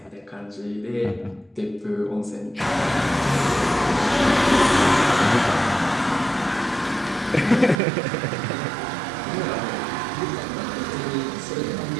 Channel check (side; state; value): left; drops out; at 7.8 s